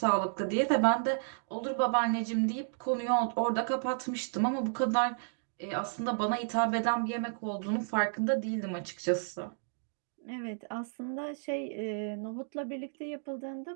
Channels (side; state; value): left; silent; digital silence